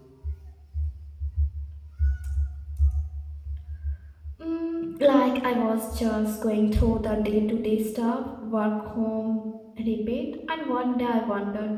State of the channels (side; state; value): both; identical; correlation 1.00